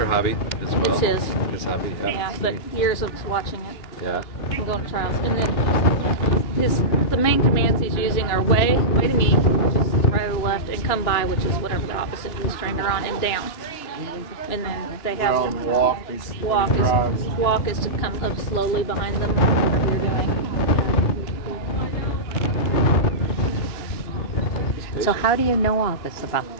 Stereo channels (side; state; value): right; late; 3.0 ms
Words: hobby as well? It's his. His hobby. Yeah, but years of watching it. Yeah. And going to trials. And then the main commands he's using are way to me, which is right or left, and come by, which is whatever the opposite he's trained her on, and down. And then they have Well, walk is to come up slowly behind them, whatever you're doing. So how do you know all this about